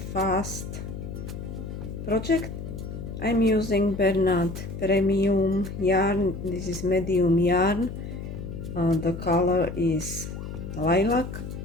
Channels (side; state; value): left; noise; hum, 8 dB below the sound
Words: fast project. I'm using Bernard premium yarn. This is medium yarn. The color is lilac,